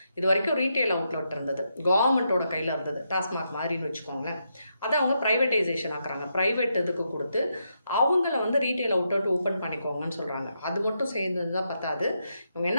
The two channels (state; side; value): inverted; both; correlation -0.82